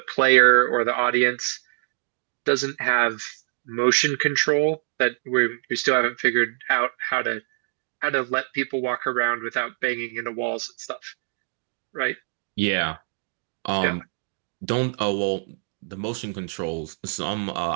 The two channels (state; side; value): silent; left; 62 dB below the other